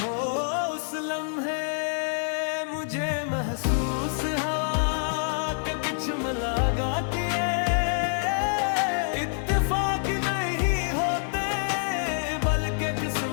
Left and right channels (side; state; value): right; silent; digital silence